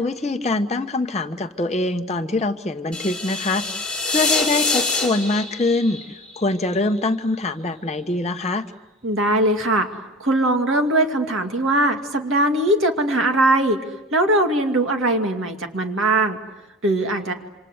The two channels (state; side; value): normal; both; correlation 0.37